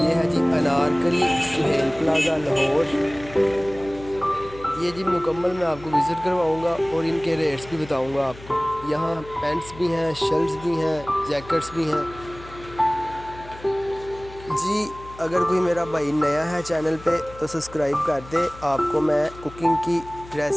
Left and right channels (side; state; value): left; noise; hum, 18 dB below the sound